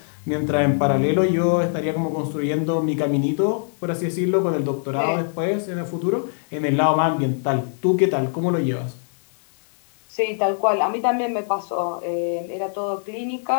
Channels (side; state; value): right; silent; digital silence